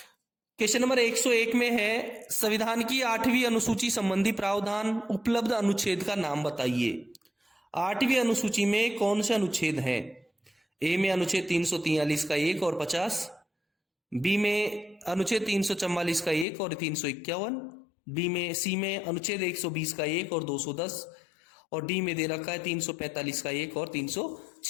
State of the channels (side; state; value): right; drops out; at 16.4 s